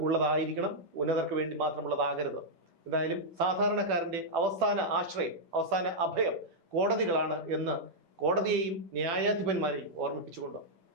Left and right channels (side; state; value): left; late; 10 ms